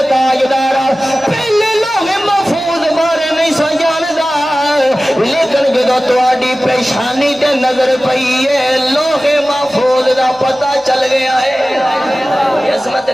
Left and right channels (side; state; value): left; noise; hum, 29 dB below the sound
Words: تاجدارا پہلے لوح محفوظ بارے نہیں سا جاندا لیکن جدوں تہاڈی پیشانی تے نظر پئی ہے لوح محفوظ دا پتہ چل گیا ہے عظمت